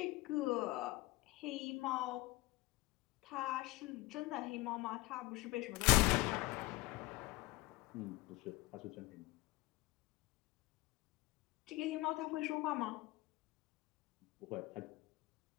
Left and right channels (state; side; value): quieter; right; 20.9 dB